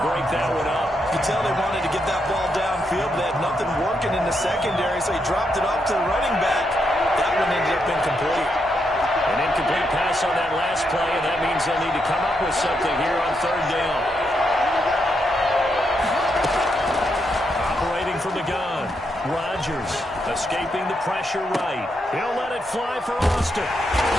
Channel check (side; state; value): both; normal; correlation 0.81